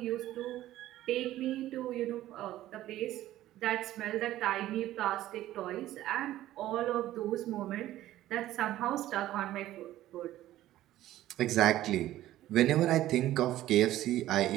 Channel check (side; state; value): left; quieter; 14.3 dB